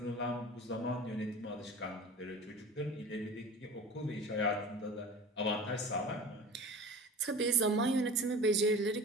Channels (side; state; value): both; normal; correlation 0.36